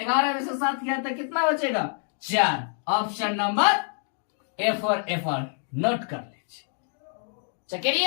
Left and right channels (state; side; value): silent; right; 56 dB below the other